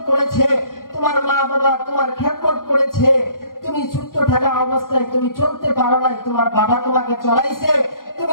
করেছে, তোমার মা বাবা তোমার খেদমত করেছে। তুমি ছোট্ট থাকা অবস্থায় তুমি চলতে পারো নাই, তোমার বাবা তোমাকে চলাইছে।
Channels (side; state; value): right; late; 0.90 ms